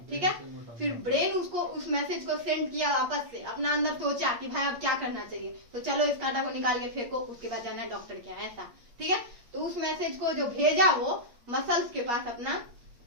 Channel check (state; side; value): late; left; 8.4 ms